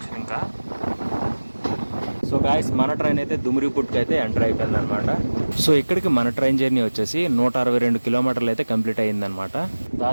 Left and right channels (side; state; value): both; inverted; correlation -1.00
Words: ఇంకా సో గాయస్ మన ట్రైన్ అయితే దుమ్రిపుట్కి అయితే ఎంటర్ అయిపోయింది అనమాట. సో ఇక్కడికి మన ట్రైన్ జర్నీ వచ్చేసి 162 కిలోమీటర్లు అయితే కంప్లీట్ అయ్యిందనమాట.